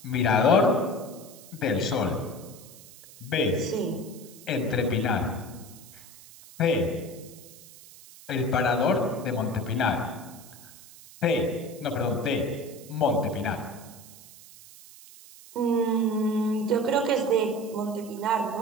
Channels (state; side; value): noise; right; hiss, 19 dB below the sound